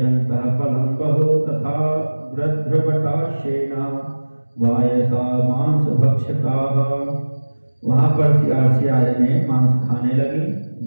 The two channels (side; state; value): both; inverted; correlation -1.00